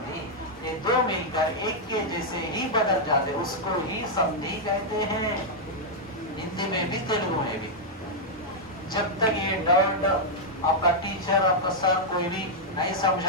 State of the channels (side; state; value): both; normal; correlation -0.05